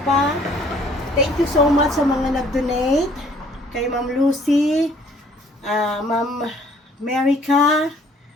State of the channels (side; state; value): both; normal; correlation 0.58